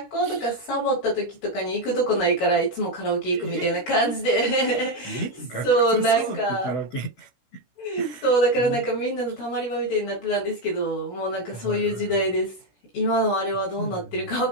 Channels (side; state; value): right; late; 16 ms